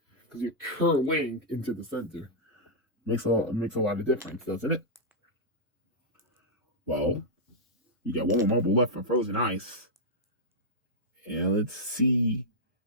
because you're curling into the center. Makes a lot of difference, doesn't it? Well, you got one more marble left for Frozen Ice. And let's see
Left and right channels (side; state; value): both; normal; correlation -0.08